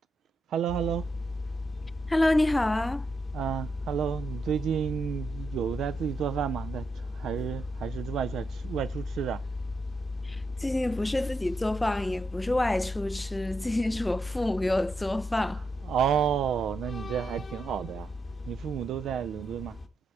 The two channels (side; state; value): both; normal; correlation 0.83